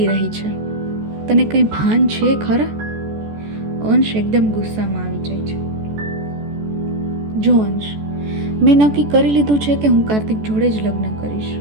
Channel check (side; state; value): left; late; 14 ms